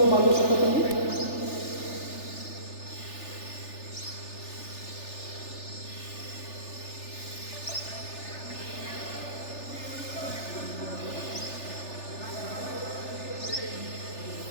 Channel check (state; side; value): late; right; 3.4 ms